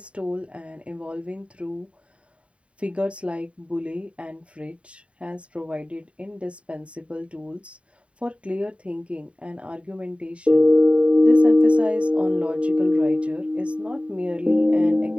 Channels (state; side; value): late; left; 0.062 ms